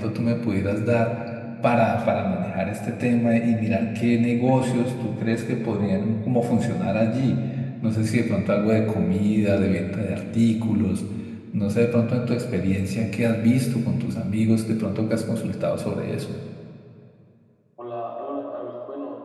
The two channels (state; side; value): identical; both; correlation 1.00